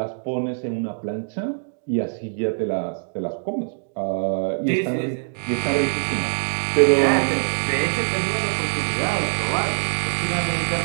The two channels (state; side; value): silent; left; digital silence